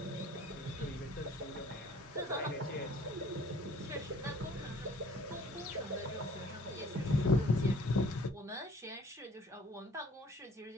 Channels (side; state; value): both; normal; correlation 0.54